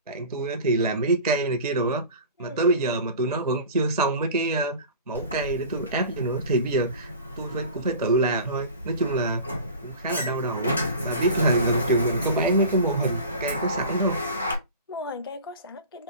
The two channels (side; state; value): both; inverted; correlation -0.38